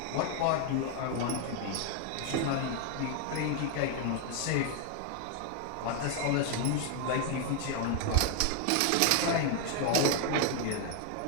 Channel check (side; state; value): both; different; correlation 0.00